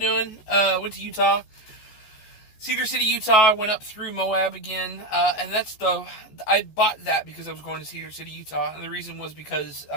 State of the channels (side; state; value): right; late; 14 ms